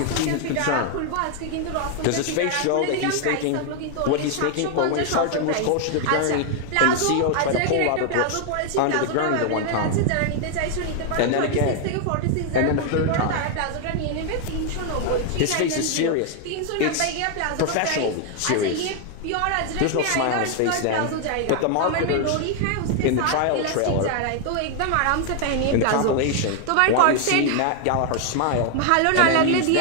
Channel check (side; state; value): both; different; correlation 0.00